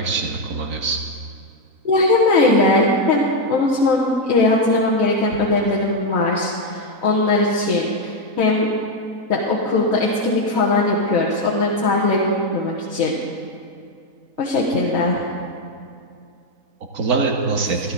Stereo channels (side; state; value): left; late; 4.0 ms